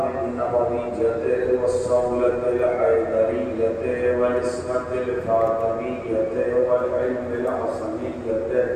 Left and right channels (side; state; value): both; identical; correlation 1.00